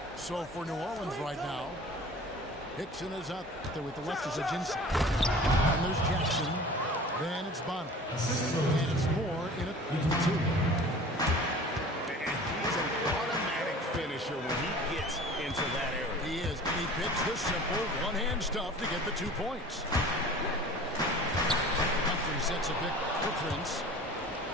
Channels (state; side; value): normal; both; correlation 0.43